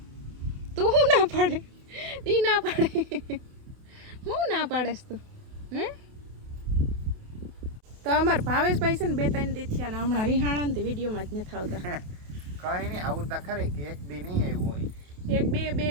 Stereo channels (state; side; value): late; left; 28 ms